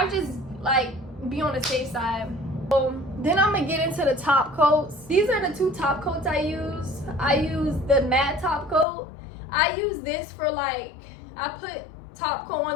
just like be on the safe side. Then I'm gonna get into the top coats. These are the 2 top coats I use. I use the matte top coat. I use this for, like, I put top coat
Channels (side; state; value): right; drops out; at 8.8 s